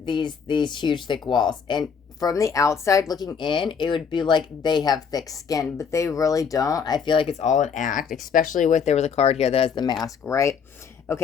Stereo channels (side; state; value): right; quieter; 6.5 dB